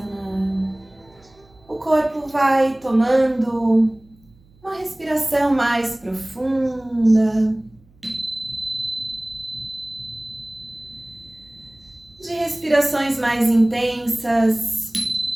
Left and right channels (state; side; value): noise; right; hum, 29 dB below the sound